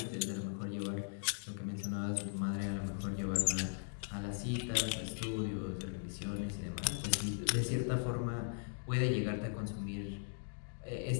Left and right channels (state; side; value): silent; right; digital silence